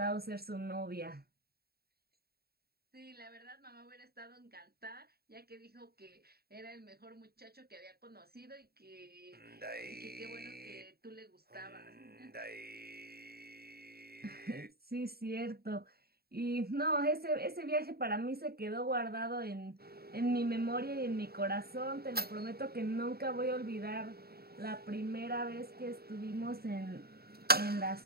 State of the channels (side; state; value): left; late; 0.45 ms